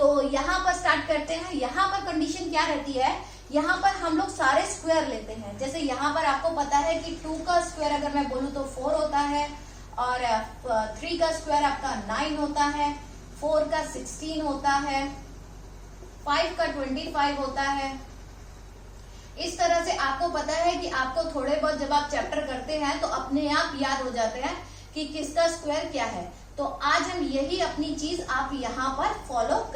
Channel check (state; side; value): identical; both; correlation 1.00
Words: यहाँ पर स्टार्ट करते हैं। यहाँ पर कंडीशन क्या रहती है, यहाँ पर हम लोग सारे स्क्वायर लेते हैं। जैसे यहाँ पर आपको पता है कि 2 का स्क्वायर अगर मैं बोलूँ तो 4 होता है, और 3 का स्क्वायर आपका 9 होता है, 4 का 16 होता है, 5 का 25 होता है। इस तरह से आपको पता है कि आपको थोड़े बहुत जब आप चैप्टर करते हैं तो अपने आप याद हो जाते हैं कि किसका स्क्वायर क्या है। तो आज हम यही अपनी चीज आप यहाँ पर फॉलो